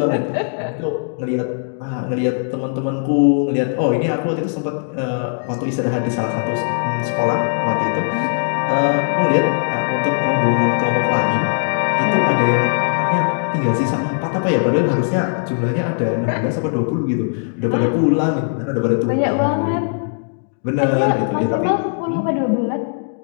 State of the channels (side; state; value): right; silent; digital silence